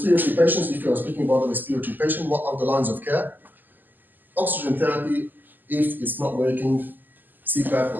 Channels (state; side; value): late; left; 0.087 ms